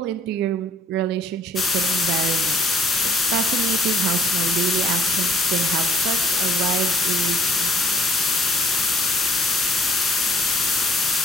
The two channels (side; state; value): both; normal; correlation 0.61